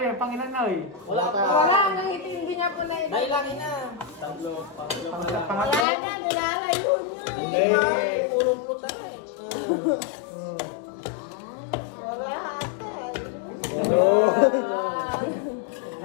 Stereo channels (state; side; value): drops out; right; at 5.9 s